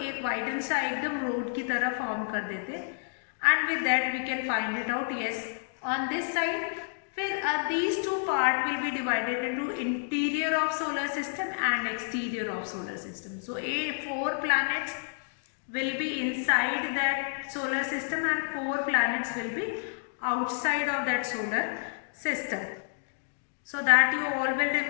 वाइडन सा एकदम रोड की तरह फॉर्म कर देते हैं. And with that we can find it out. Yes, on this side फिर these two part will be divided into interior of solar system and exterior of solar system. So 4 planets will be inside that solar system and 4 planets will be outside of that solar system. So that you all will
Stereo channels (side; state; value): right; silent; digital silence